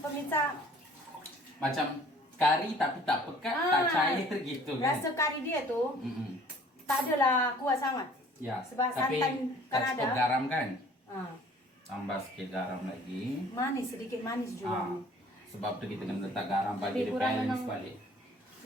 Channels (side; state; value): both; normal; correlation 0.53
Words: pemirsa? Macam kari tapi tak pekat, tak cair gitu kan. Rasa kari dia tu Mm-mm. tak adalah kuat sangat. Ya, Sebab tapi santan kan tak ada. cukup garam kan? Ah, Tambah sikit garam lagi. manis, sedikit manis juga. Sebab tu kita kena letak garam bagi Lebih dia kurang balance memang- balik.